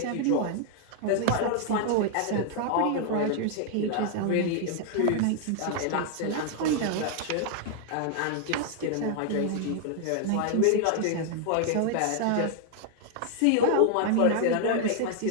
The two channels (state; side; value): different; both; correlation 0.00